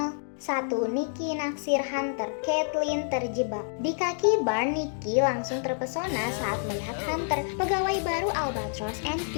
1. Nikki naksir Hunter, Caitlin terjebak. Di kaki bar, Nikki langsung terpesona saat melihat Hunter, pegawai baru Albatross and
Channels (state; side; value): silent; right; digital silence